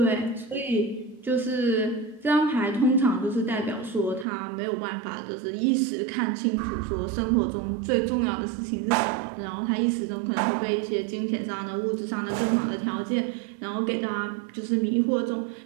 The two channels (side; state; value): left; drops out; at 4.2 s